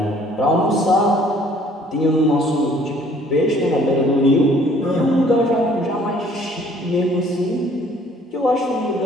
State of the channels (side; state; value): both; normal; correlation 0.58